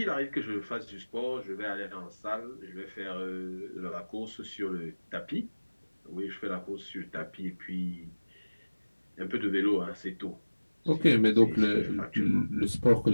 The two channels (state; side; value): inverted; both; correlation -1.00